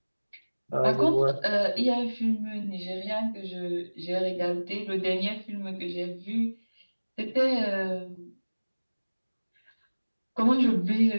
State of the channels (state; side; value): inverted; both; correlation -1.00